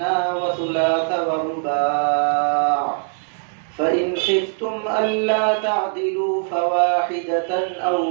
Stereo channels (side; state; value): left; silent; digital silence